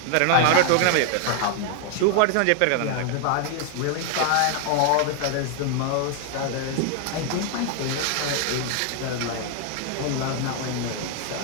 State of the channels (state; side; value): different; both; correlation 0.00